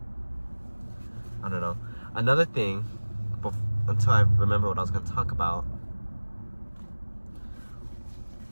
I don't know. Another thing, until I remember what I was going to talk about,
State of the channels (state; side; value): inverted; both; correlation -1.00